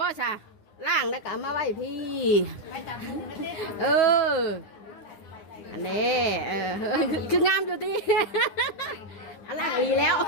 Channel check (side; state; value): right; late; 9.8 ms